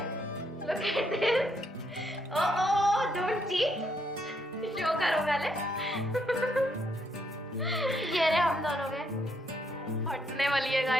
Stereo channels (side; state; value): both; normal; correlation 0.74